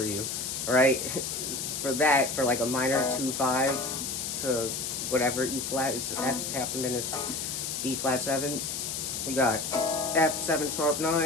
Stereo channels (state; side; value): noise; left; hiss, 3 dB below the sound